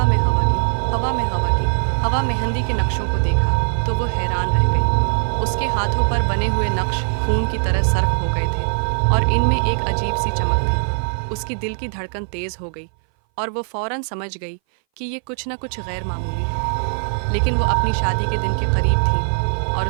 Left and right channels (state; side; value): silent; left; 61 dB below the other